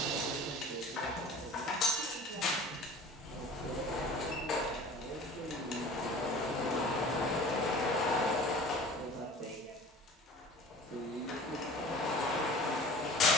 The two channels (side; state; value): both; normal; correlation 0.42